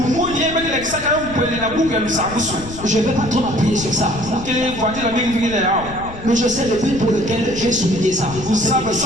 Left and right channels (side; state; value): left; noise; rumble, 13 dB below the sound